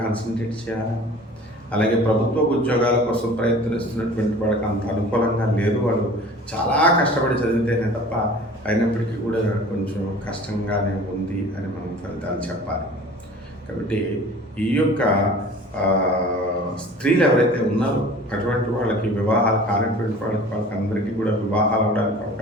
కాన్సన్ట్రేట్ చేయాలి. అలాగే ప్రభుత్వ ఉద్యోగాల కోసం ప్రయత్నిస్తున్నటువంటి వాళ్ళకి అంత అనుకూలంగా లేదు. వాళ్ళు చాలా కష్టపడి చదివితేనే తప్ప అయినప్పటికీ కూడా కొంచెం కష్టంగానే ఉంది అని మనం ఫలితాలు చెప్పాలి. కాబట్టి ఈ యొక్క స్త్రీలు ఎవరైతే ఉన్నారో అటువంటి వాళ్ళకి వివాహాలు కానటువంటి వాళ్ళకి అందరికీ కూడా వివాహాలు అవడానికి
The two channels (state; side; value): normal; both; correlation 0.44